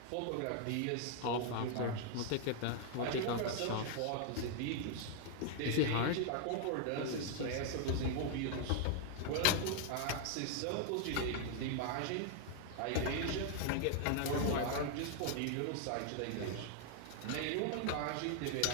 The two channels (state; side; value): different; both; correlation 0.00